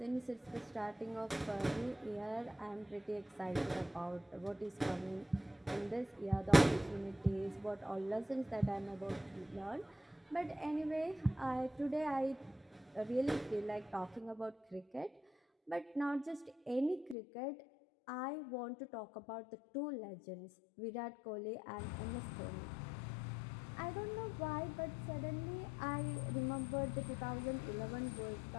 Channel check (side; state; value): right; drops out; at 17.2 s